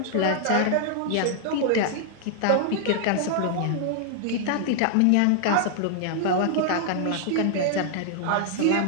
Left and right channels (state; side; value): different; both; correlation 0.00